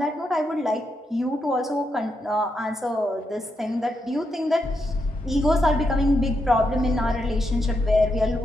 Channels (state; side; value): normal; both; correlation 0.82